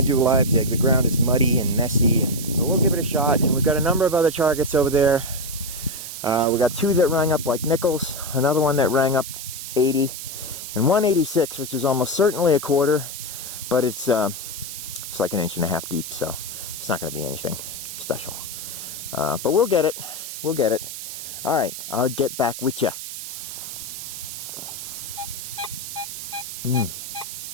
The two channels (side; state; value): right; noise; hiss, 8 dB below the sound